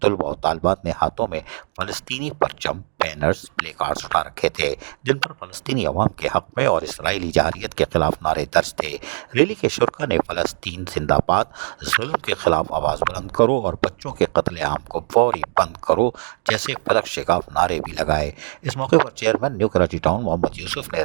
तलबा और तालबात ने हाथों में फ़लस्तीनी परचम, बैनर्स, प्ले कार्ड्स उठा रखे थे, जिन पर फ़लस्तीनी अवाम के हक़ में और इसराइली जारियत के खिलाफ नारे दर्ज थे। रैली के शुरका ने फ़लस्तीन जिंदाबाद, जुल्म के खिलाफ आवाज़ बुलंद करो और बच्चों के कत्ले आम को फौरी बंद करो जैसे फलक शिगाफ नारे भी लगाए। इस मौके पर chairman new Karachi town Mohammad Yusuf ने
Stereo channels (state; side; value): silent; left; digital silence